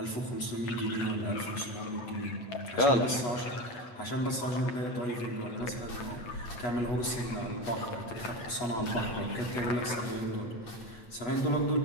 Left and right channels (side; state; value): right; late; 8.2 ms